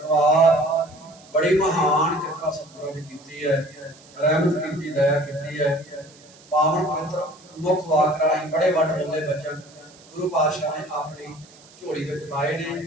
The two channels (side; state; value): right; noise; hiss, 25 dB below the sound